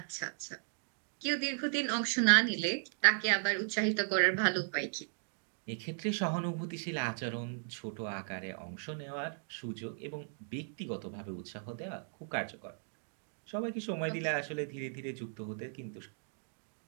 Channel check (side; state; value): left; silent; digital silence